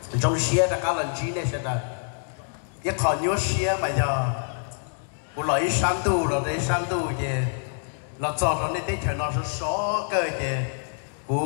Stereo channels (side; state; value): right; silent; digital silence